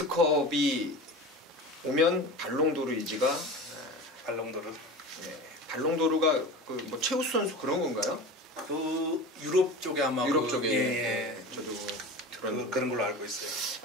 오면 발롱도르 이지가 발롱도르. 예, 발롱도르가 그 뭐 최우수 선수 그런 건가요? 그 유럽 쪽에 아마 유럽 쪽에 예. 저도 들었는데 그런 걸로 알고 있어요.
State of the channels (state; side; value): normal; both; correlation 0.31